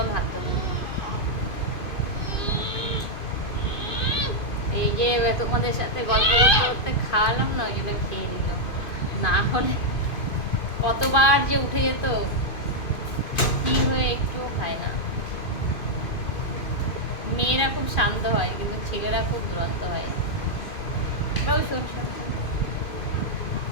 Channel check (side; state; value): right; late; 2.5 ms